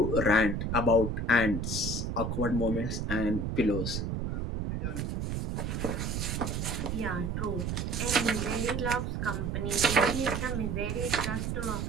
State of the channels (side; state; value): right; noise; rumble, 1 dB below the sound